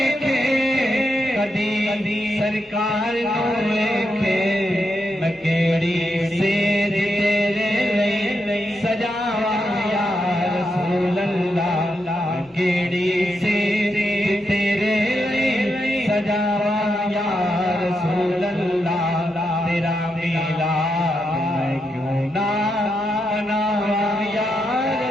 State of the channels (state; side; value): normal; both; correlation 0.84